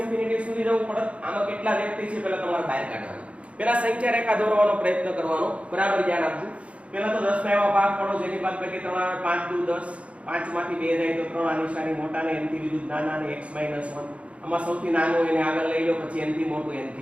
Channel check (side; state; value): left; late; 0.062 ms